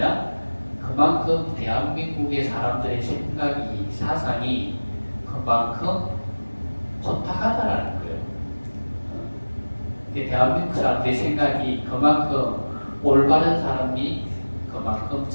그만큼 대한민국의 사람들의 생각이 사상이 그만큼 혼탁하다라는 거예요. 대한민국 사람들의 생각이 그만큼 올바른 사람이 그만큼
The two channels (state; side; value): inverted; both; correlation -1.00